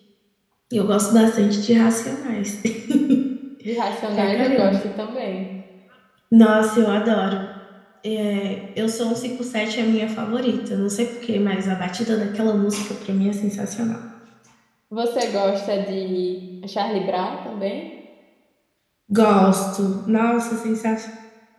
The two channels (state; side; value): identical; both; correlation 1.00